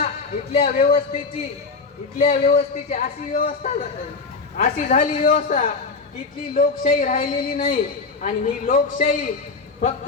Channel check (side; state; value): right; quieter; 4.4 dB